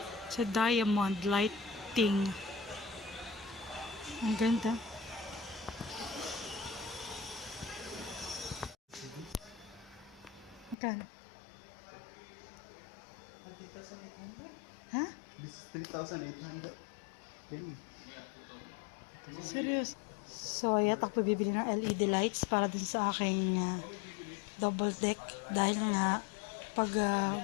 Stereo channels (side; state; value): right; drops out; at 10.8 s